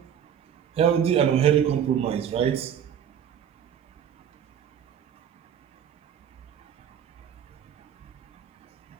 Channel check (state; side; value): quieter; left; 8.8 dB